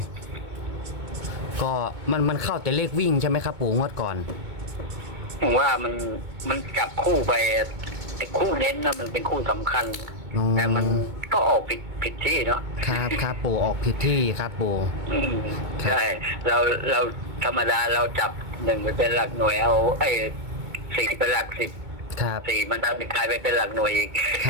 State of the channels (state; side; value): late; left; 2.2 ms